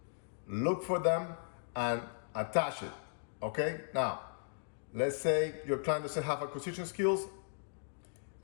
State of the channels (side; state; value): right; silent; digital silence